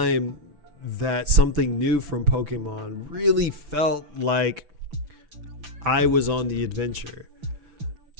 that something new from Pokemon really felt like I was on the adventure.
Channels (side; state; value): left; late; 6.0 ms